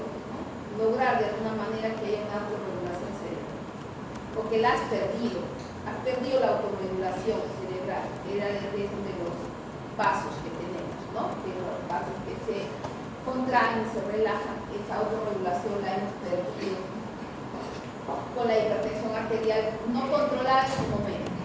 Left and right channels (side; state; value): both; identical; correlation 1.00